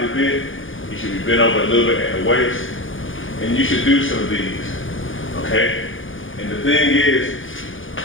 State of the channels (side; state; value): right; late; 0.58 ms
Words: bent. You should be bent over a little bit at the waist, and you should do some of these, okay? And the thing is,